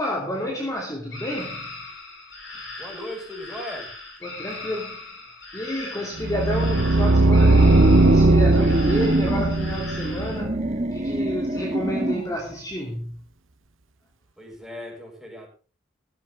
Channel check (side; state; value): both; normal; correlation 0.72